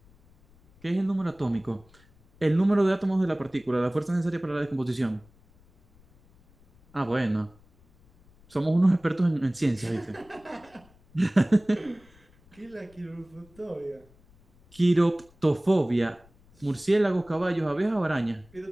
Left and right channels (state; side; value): noise; left; rumble, 29 dB below the sound